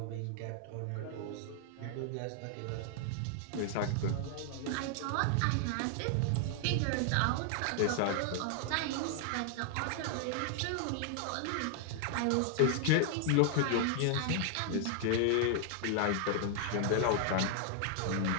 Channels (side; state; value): both; different; correlation 0.00